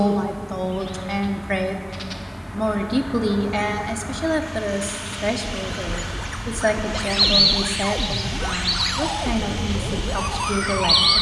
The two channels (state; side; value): identical; both; correlation 1.00